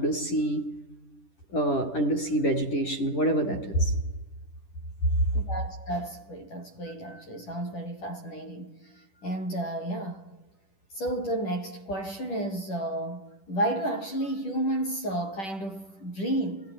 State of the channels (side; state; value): right; late; 10 ms